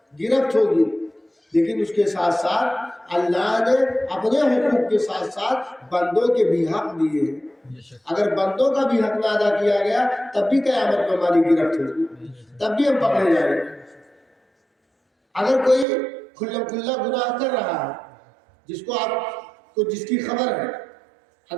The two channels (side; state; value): left; drops out; at 15.9 s